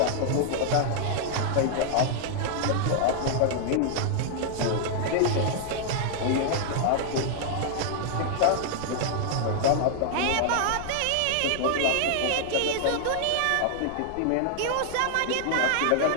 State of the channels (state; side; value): different; both; correlation -0.01